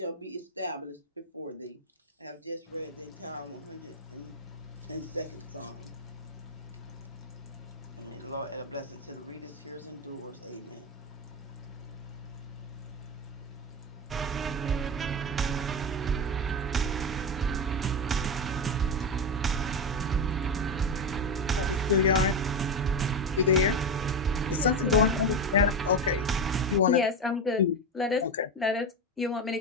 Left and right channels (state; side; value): normal; both; correlation 0.16